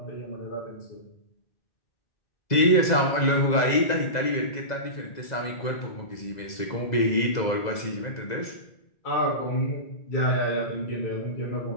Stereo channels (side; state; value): right; late; 2.0 ms